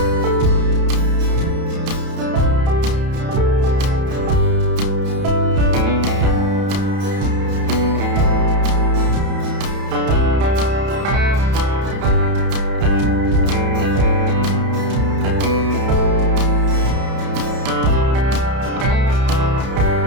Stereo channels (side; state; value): left; late; 31 ms